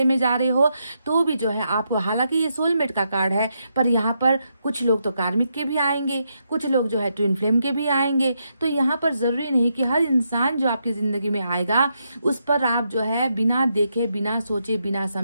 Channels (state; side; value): inverted; both; correlation -0.81